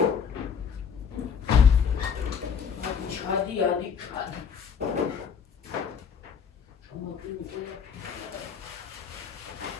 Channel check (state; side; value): quieter; right; 6.9 dB